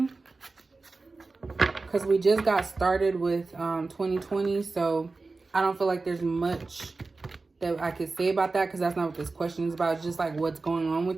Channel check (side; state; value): left; quieter; 3.7 dB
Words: Because we just got started with 2020. So I don't feel like there's much that I could say about that, because that's not what this question is about. It's just like what's going on